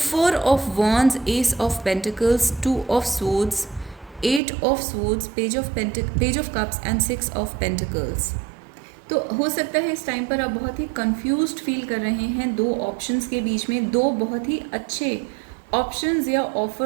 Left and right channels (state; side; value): drops out; left; at 4.4 s